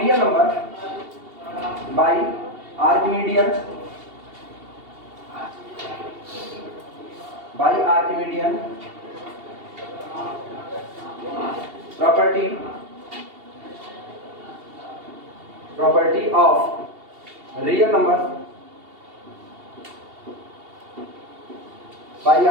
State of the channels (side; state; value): left; late; 2.7 ms